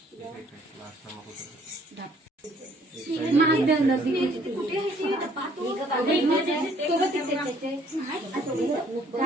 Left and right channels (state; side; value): normal; both; correlation 0.61